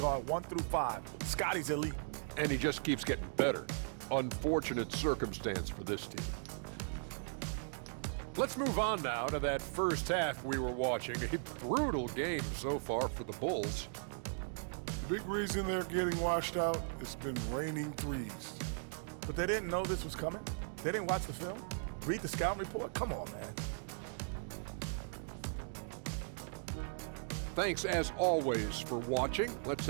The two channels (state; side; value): silent; left; digital silence